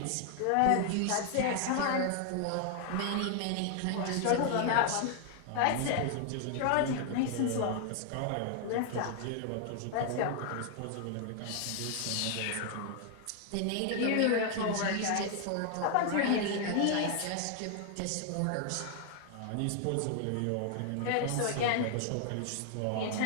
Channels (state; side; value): different; both; correlation 0.00